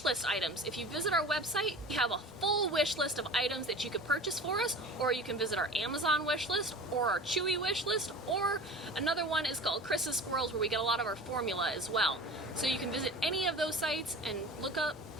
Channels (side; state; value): both; normal; correlation 0.37